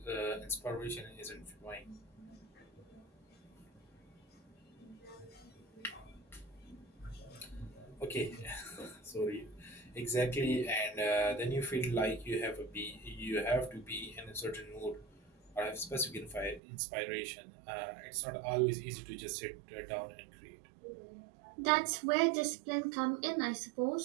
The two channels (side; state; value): left; drops out; at 16.6 s